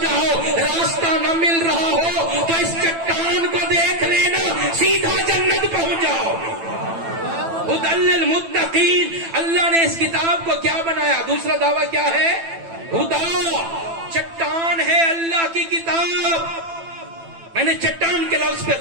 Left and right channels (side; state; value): left; late; 9.0 ms